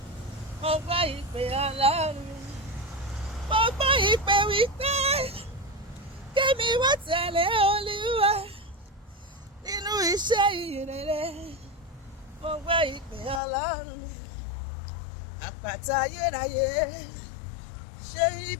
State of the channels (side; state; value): right; drops out; at 13.4 s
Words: mo gbọ́ ìpè Ọlọ́run mi, mo gbọ́ ìpè wípé kémi wá tẹ̀lé Olúwa nínú iṣẹ́ ìrere. Mo gbọ́ ìpè Ọlọ́run mi, àpáta ayérayé, ṣe